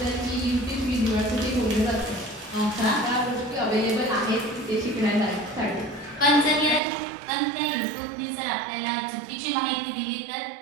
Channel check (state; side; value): drops out; left; at 6.8 s